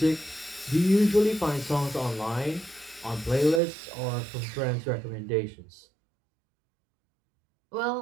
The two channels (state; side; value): drops out; left; at 3.6 s